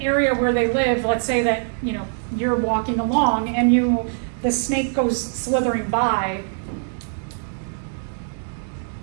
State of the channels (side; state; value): left; silent; digital silence